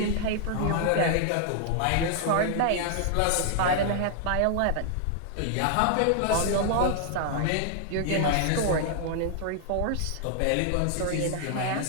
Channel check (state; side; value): different; both; correlation 0.00